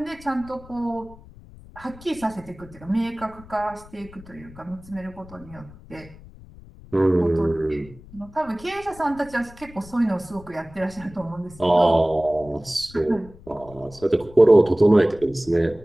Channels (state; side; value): noise; left; rumble, 20 dB below the sound